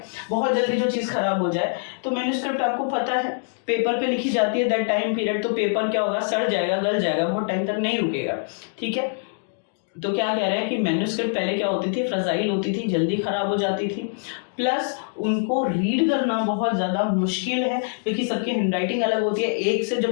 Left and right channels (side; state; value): right; silent; digital silence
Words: बहुत जल्दी जो चीज़ खराब हो जाए, तो मैन्युस्क्रिप्ट आपको पता है पेपर पे लिखी जाती है, दैट टाइम पीरियड, तो पेपर क्या होगा, सड़ जाएगा, गल जाएगा, बहुत टाइम तक नहीं रुकेगा, ठीक है। तो क्या कह रहे हैं कि मैन्युस्क्रिप्ट पहले क्या होती थी, फ्रेजाइल होती थी, जल्दी खराब हो जाती थी, प्लस उनको रीड करना बहुत ज़्यादा मुश्किल है क्योंकि सबकी हैंडराइटिंग अलग होती है। एक से